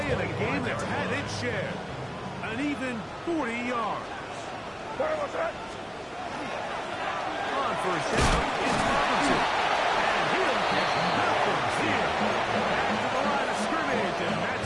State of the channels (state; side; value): identical; both; correlation 1.00